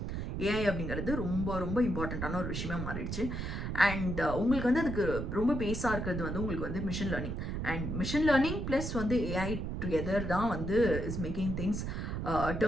ஏஐ அப்படிங்கிறது ரொம்ப ரொம்ப இம்பார்ட்டண்ட்டான ஒரு விஷயமா மாறிடுச்சு. அண்ட் உங்களுக்கு வந்து அதுக்கு ரொம்ப பேஸாக இருக்கிறது வந்து உங்களுக்கு வந்து machine learning. And machine learning plus வந்து ஏஐ டுகெதர் தான் வந்து is making things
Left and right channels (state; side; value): noise; right; rumble, 3 dB below the sound